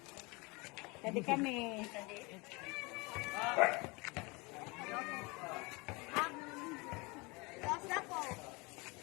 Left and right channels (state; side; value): quieter; right; 26.8 dB